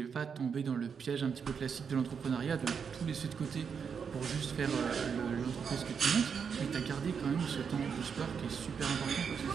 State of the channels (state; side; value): quieter; left; 6.5 dB